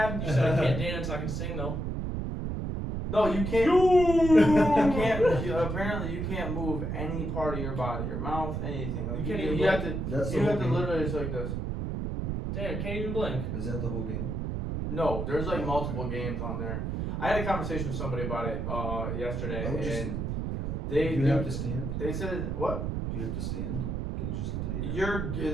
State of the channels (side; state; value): right; noise; rumble, 2 dB below the sound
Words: You said I can't dance, I can sing though. No, you can't. You can't. Apparently, you can't move any part of your body, your mouth, anything. Like, You can't even You have to. That's the You whole have to game. literally just like this. Damn, can't even blink. Is that the whole game? No, there's like multiple games on there. I had a conversation with somebody about it yesterday, I would just- and they Do you have to stand? they said what? Do you have to stand? Can you just lay down?